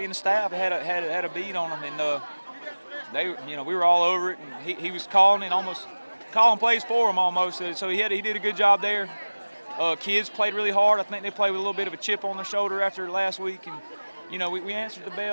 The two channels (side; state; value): both; inverted; correlation -1.00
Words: and the staff had a beat on them, and we were all over it. And he was calling plays for them almost. So he did a good job there. Kids played really hard. I think they played with a little bit of a chip on their shoulder after last week, and we answered the